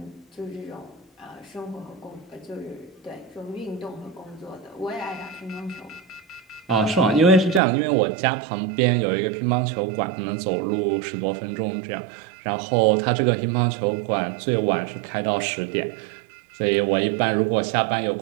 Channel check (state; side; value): drops out; left; at 7.6 s